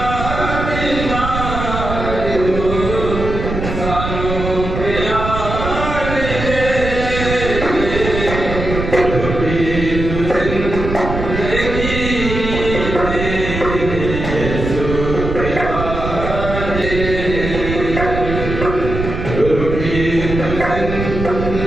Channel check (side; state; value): right; noise; rumble, 5 dB below the sound